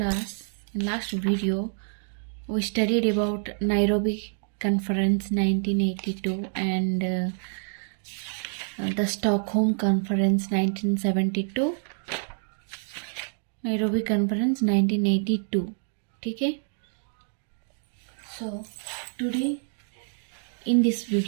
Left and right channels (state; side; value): silent; left; digital silence